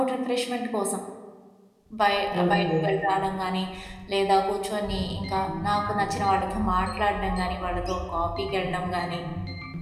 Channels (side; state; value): both; identical; correlation 1.00